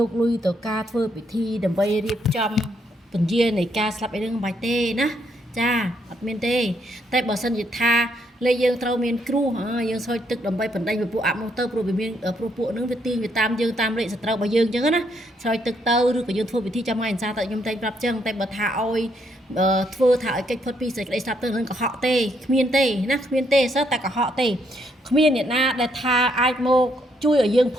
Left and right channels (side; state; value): both; normal; correlation 0.73